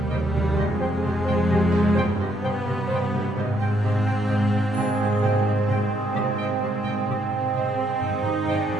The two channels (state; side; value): normal; both; correlation 0.72